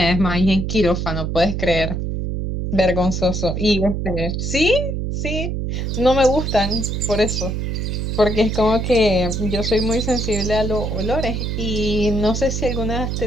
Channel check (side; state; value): right; noise; hum, 2 dB below the sound